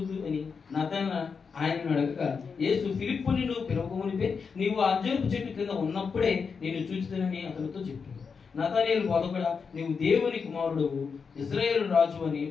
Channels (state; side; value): quieter; right; 5.6 dB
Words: అని నతనయేలు ఆయనను అడగగా, యేసు ఫిలిప్పుని నువ్వు పిలవకమునిపే నీవు ఆ అంజూరపు చెట్టు కింద ఉన్నప్పుడే నేను చూచుతానని అతనితో చెప్పాడు. నతనయేలు బోధకుడా, నీవు దేవుని కుమారుడవు, ఇశ్రాయేలు రాజు అని